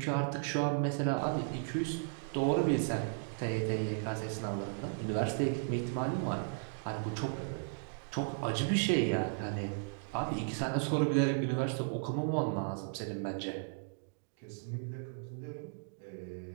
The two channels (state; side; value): silent; left; digital silence